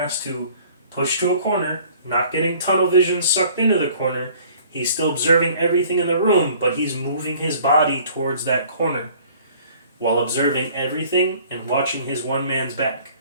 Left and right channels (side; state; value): both; inverted; correlation -0.53